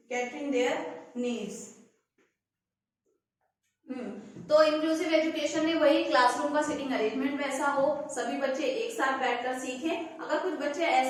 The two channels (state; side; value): identical; both; correlation 1.00